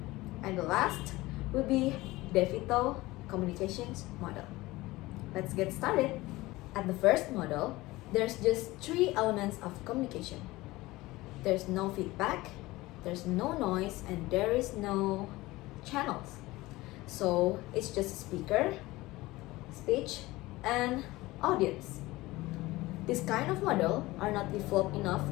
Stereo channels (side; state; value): right; quieter; 19.5 dB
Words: And the last will be DeVito communications model. Let's get started. At the first model, there's just three elements of communication. There's no feedback, there's no noise, and there is no channels. So it's just speaker, speech, and audience. This kind of model are not developed enough